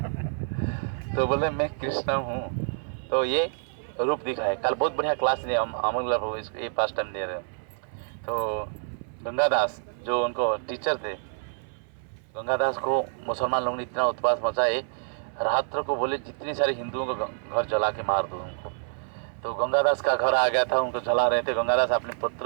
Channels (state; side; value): silent; left; 60 dB below the other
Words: तो बोले मैं कृष्ण हूँ। तो ये रूप दिखाए। कल बहुत बढ़िया क्लास दिए अमर प्रभु, ये फर्स्ट टाइम दे रहे हैं। तो गंगादास जो उनको टीचर थे, गंगादास को मुसलमान लोगों ने इतना उत्पात मचाए, रात्र को बोले जितनी सारे हिंदुओं को घर जला के मार दो उनको। तो गंगादास का घर आ गया था, उनको जला रहे थे। गंगादास अपने